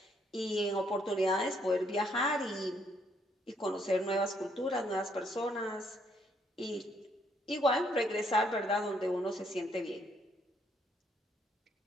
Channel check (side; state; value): both; normal; correlation 0.70